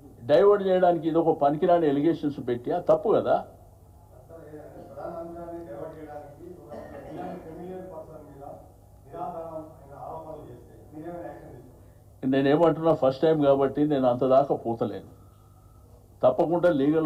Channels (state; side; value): identical; both; correlation 1.00